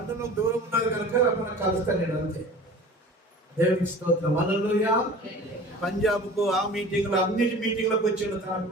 దూరం ఉన్నది కనుక మనం కలుస్తాను అంతే. దేవునికి స్తోత్రం. హల్లెలూయా. పంజాబ్కు ఆ మీటింగ్లో, అన్నిటి మీటింగ్లకు వచ్చిండు తన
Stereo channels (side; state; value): both; normal; correlation 0.41